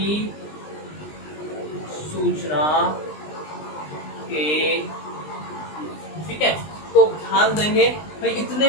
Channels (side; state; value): right; late; 20 ms